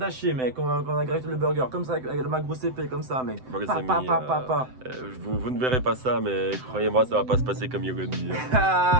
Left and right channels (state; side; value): late; left; 7.8 ms